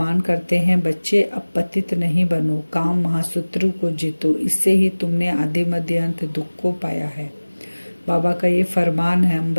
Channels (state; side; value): inverted; both; correlation -1.00